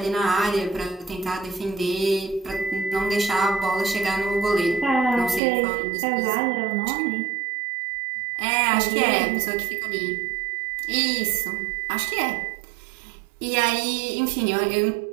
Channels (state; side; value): drops out; left; at 5.4 s